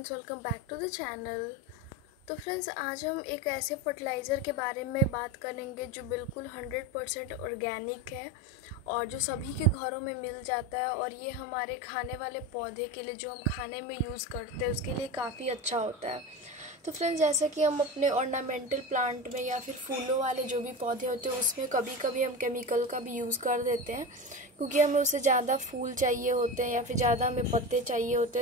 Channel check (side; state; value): both; normal; correlation 0.24